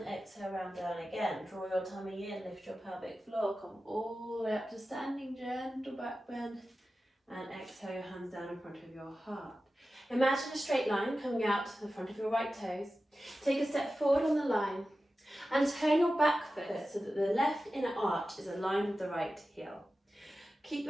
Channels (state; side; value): normal; both; correlation 0.94